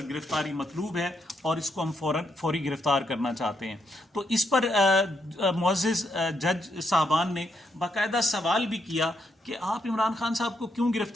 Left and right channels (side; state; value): both; normal; correlation 0.78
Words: گرفتاری مطلوب ہے اور اس کو ہم فوری گرفتار کرنا چاہتے ہیں۔ تو اس پر معزز جج صاحبان نے باقاعدہ سوال بھی کیا کہ آپ عمران خان صاحب کو کیوں